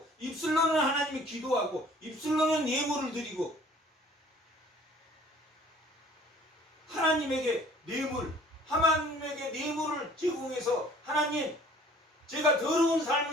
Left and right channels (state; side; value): normal; both; correlation 0.53